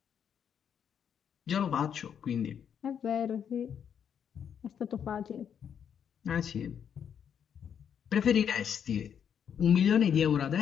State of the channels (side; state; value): right; quieter; 8.2 dB